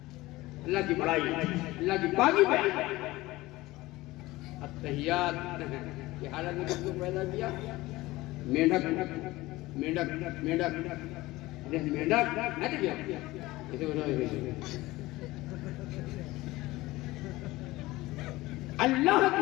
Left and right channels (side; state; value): right; quieter; 19.1 dB